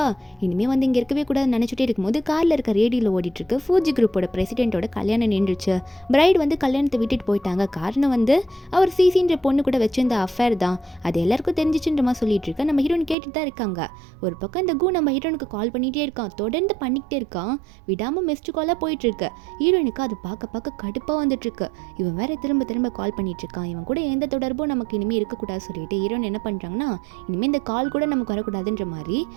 இனிமேல் வந்து இங்கே இருக்கவே கூடாதுன்னு நினச்சிட்டே இருக்கும்போது காரில் இருக்க ரேடியோவில் ஓடிட்டு இருக்கு, ஃபூஜி குரூப்போட பிரசிடென்ட்டோட கல்யாணம் நின்றுச்சு. பிரைட் வந்து கல்யாணத்தை விட்டுட்டு போயிட்டாங்க. காரணம் வந்து அவர் சிசின்ற பொண்ணு கூட வச்சிருந்த அஃபேர் தான், அது எல்லாருக்கும் தெரிஞ்சிச்சுன்ற மாதிரி சொல்லிட்டு இருக்கா. நம்ம ஹீரோன் கேட்டுட்டு தான் இருக்காங்க. ஒரு பக்கம் இந்த கு நம்ம ஹீரோனுக்கு கால் பண்ணிகிட்டே இருக்கான், தொடர்ந்து பண்ணிக்கிட்டே இருக்கான், விடாமல் மிஸ்டு காலாக போயிட்டு இருக்கு. ஹீரோனுக்கு அது பார்க்க கடுப்பாக வந்துட்டு இருக்கு. இவன் வேற திரும்ப கால் பண்ணிட்டு இருக்கான், இவன் கூட எந்த தொடர்பும் நமக்கு இனிமேல் இருக்கக்கூடாது சொல்லிட்டு ஹீரோன் என்ன பண்ணுறாங்கன்னா, இனிமேல் இந்த கால் கூட நமக்கு வரக்கூடாதுன்ற மாதிரி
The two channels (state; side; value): drops out; left; at 13.2 s